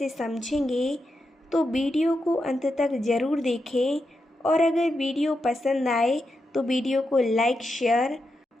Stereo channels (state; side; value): normal; both; correlation 0.86